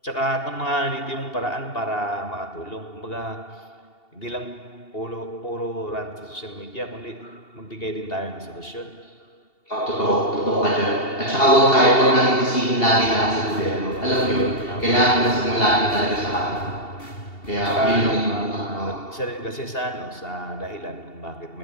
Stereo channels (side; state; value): right; late; 2.7 ms